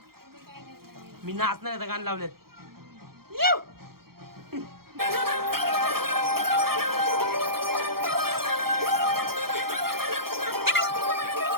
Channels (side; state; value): left; late; 0.94 ms